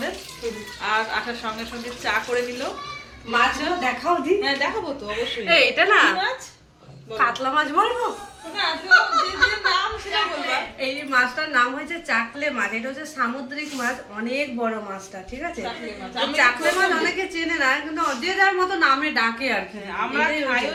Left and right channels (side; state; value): both; identical; correlation 1.00